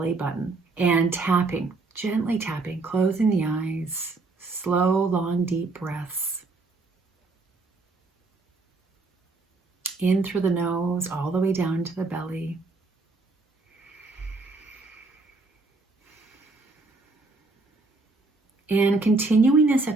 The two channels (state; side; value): quieter; left; 3.6 dB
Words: button and tapping, gently tapping, closing the eyes, slow, long, deep breaths. In through the nose, all the way down to the belly. And continuing this